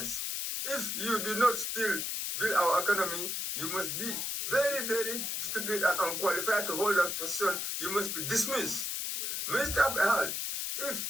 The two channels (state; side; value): noise; left; hiss, 2 dB below the sound